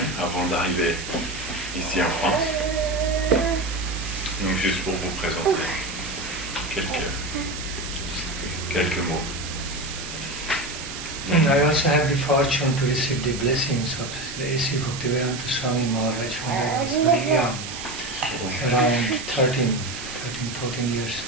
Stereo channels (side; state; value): right; noise; hiss, 9 dB below the sound